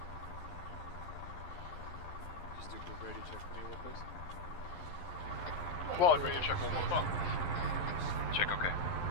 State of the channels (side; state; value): right; late; 11 ms